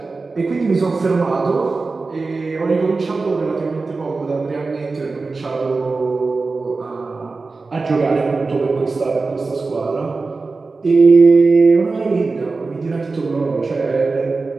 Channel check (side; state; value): left; quieter; 3.9 dB